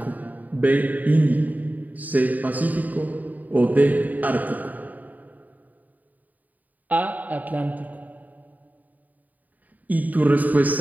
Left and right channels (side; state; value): left; late; 0.079 ms